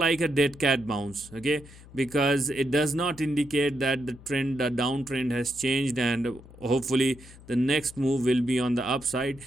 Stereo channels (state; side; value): noise; left; hum, 20 dB below the sound